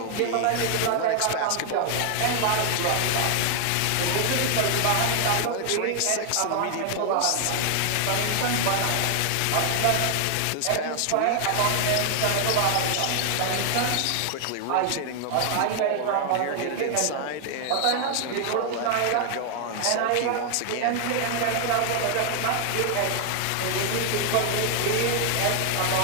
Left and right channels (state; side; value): different; both; correlation 0.00